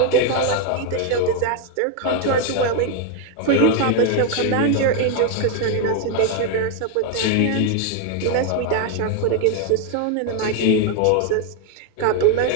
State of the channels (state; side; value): different; both; correlation 0.01